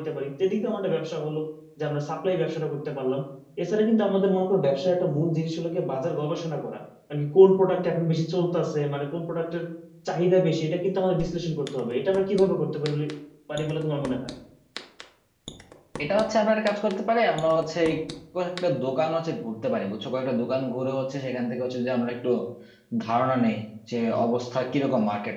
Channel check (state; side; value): identical; both; correlation 1.00